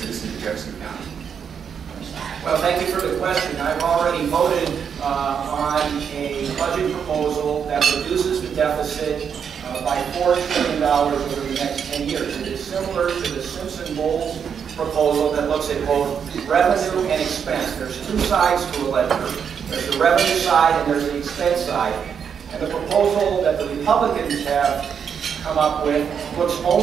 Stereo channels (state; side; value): quieter; left; 7.3 dB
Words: of Jefferson County? Well, thank you for the question. I've already voted on a budget proposal that reduces the deficit by $4 trillion over the next 10 years. It is similar to the Simpson-Bowles proposal that looks at both revenue and expense. There's two sides to a ledger. There's the revenue side and there's the expense side. And the proposal that the Republicans have come up with looks